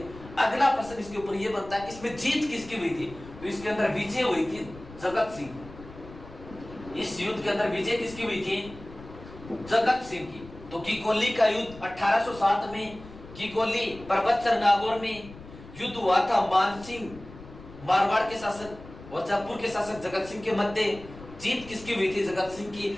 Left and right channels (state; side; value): noise; left; rumble, 17 dB below the sound